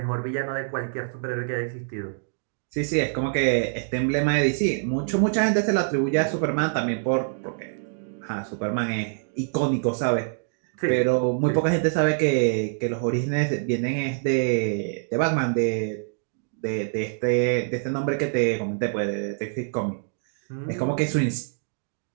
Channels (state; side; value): silent; left; digital silence